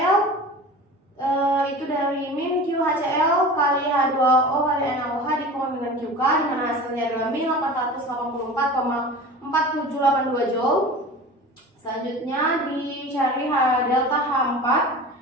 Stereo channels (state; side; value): normal; both; correlation 0.36